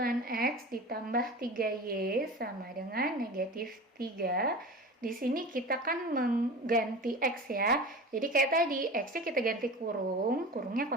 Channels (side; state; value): both; normal; correlation 0.33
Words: ditambah 3Y sama dengan negatif 3. Di sini kita kan mengganti X ya. Jadi kayak tadi, X-nya kita ganti kurung, kurungnya